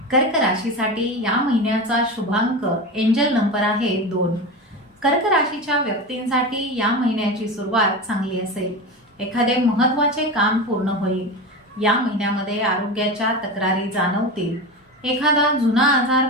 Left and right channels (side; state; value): both; normal; correlation 0.24